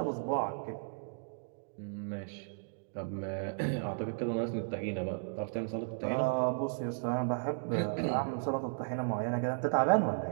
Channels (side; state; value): left; silent; digital silence